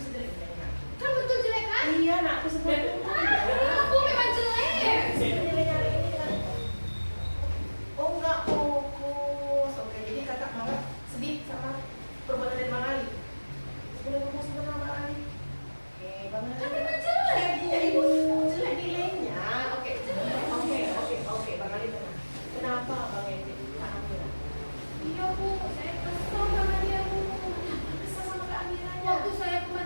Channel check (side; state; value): both; inverted; correlation -1.00